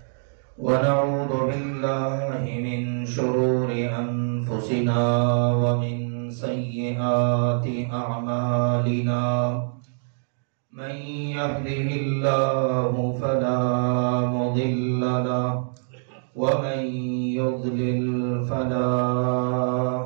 ونعوذ بالله من شرور أنفسنا ومن سيئات أعمالنا من يهده الله فلا مضل له ومن يضلل فلا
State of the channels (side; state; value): left; silent; digital silence